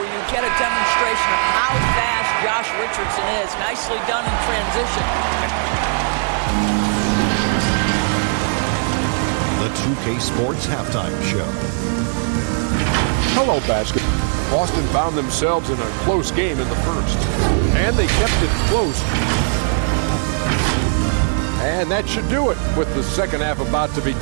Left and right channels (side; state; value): left; silent; 66 dB below the other